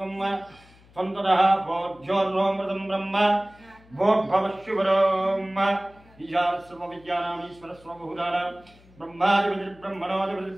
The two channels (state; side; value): noise; left; hum, 27 dB below the sound